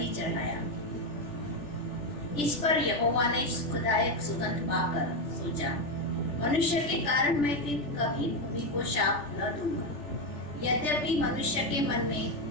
चढ़ाया। इस पर यहोवा ने सुखदायक सुगंध पाकर सोचा, मनुष्य के कारण मैं फिर कभी भूमि को शाप न दूंगा। यद्यपि मनुष्य के मन में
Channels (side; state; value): right; late; 3.4 ms